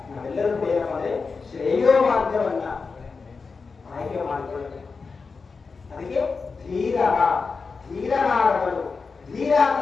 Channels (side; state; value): right; quieter; 4.7 dB